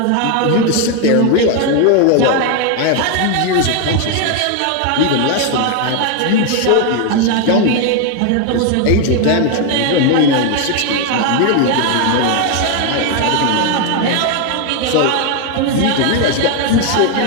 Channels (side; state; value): both; different; correlation 0.01